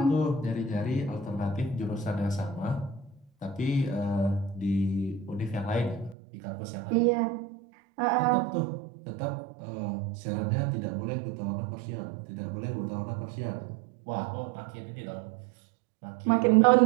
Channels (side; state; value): left; drops out; at 6.2 s